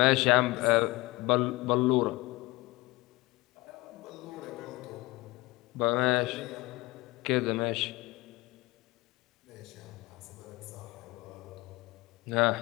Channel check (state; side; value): quieter; right; 21.7 dB